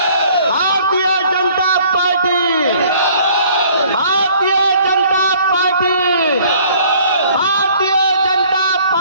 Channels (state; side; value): inverted; both; correlation -0.56